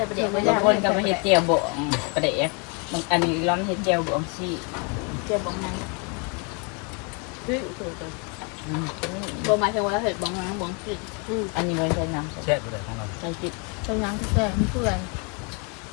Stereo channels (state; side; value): quieter; right; 34.6 dB